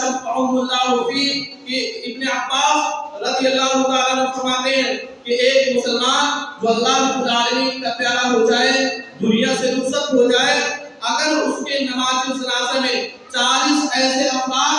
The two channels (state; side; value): identical; both; correlation 1.00